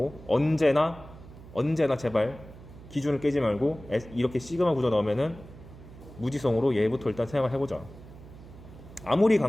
언제나 제발 기준을 깨지 말고 이렇게 시그마 구조 나오면은 무지성으로 얘부터 일단 생각을 해보자. 아무리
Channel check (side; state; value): right; noise; hum, 18 dB below the sound